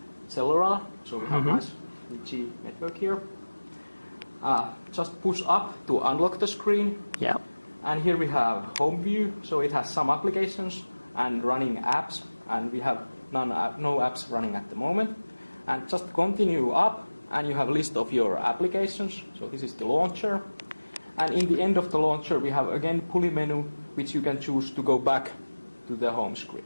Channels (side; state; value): both; inverted; correlation -1.00